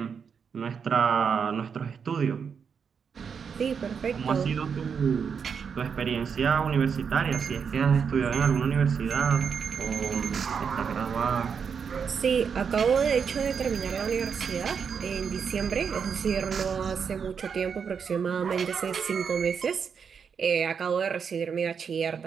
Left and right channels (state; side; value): quieter; left; 6.5 dB